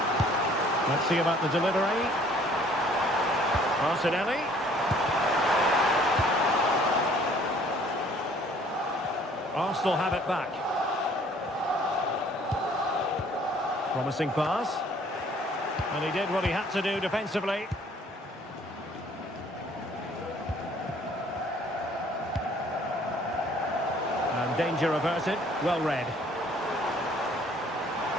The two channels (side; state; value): both; normal; correlation 0.57